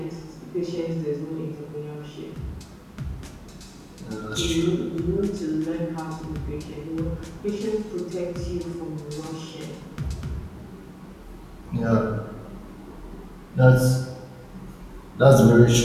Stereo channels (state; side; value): identical; both; correlation 1.00